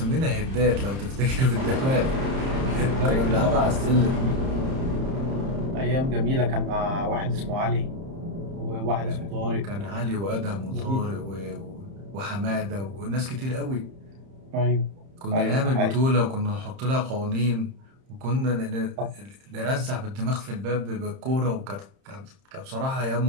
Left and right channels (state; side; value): late; left; 30 ms